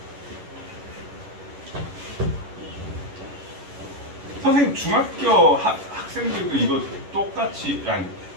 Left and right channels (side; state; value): left; late; 11 ms